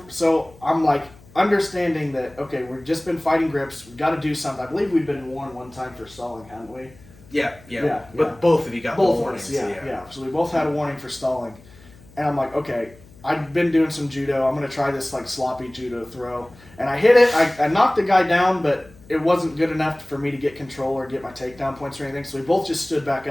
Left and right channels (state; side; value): noise; left; hum, 24 dB below the sound